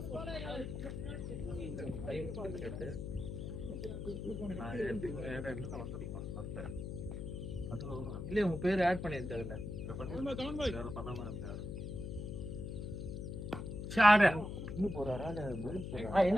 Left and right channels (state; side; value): noise; left; hum, 5 dB below the sound